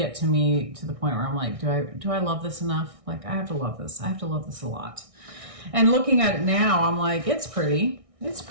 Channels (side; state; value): left; late; 1.6 ms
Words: to me to the point where I'm like, do I love this enough? Like I have to love this. I have to love this a lot. And looking at it now, I'm like, it's pretty. It's